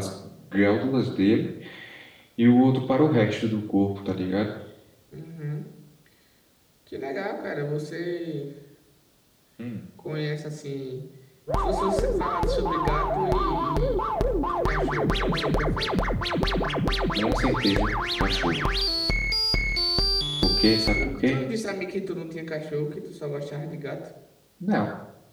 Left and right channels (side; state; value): both; identical; correlation 1.00